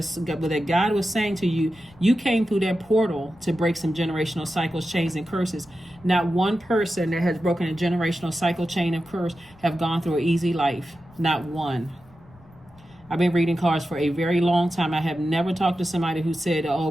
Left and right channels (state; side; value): noise; left; rumble, 26 dB below the sound